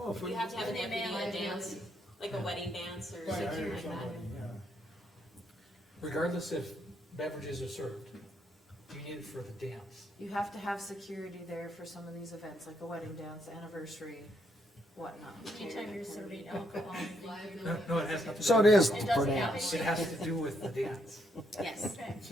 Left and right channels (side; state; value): both; normal; correlation 0.75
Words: if we- You have to have a They may deputy have a dance, liability. like a wedding dance or Right, I something hear like that. somebody, yeah. Regardless if beverages are served, you need it for the dance. You have to have security there for some of these events, like a wedding dance, anniversary, whatnot. anytime you're serving alcohol, I think you're- Liability. No, it has nothing to do. So it with- is It for doesn't have dance. It has to do with the dance. Yes. Okay. It's